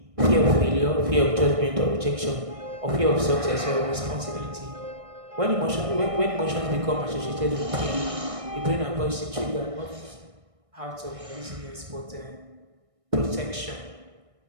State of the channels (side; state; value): left; late; 1.6 ms